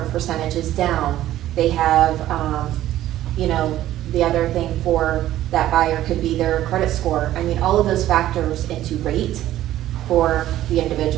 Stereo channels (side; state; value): left; quieter; 13.6 dB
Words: percentages down. They have, you know, the other thing for that buyer could be their credit score. I mean, all of those factors into rate for the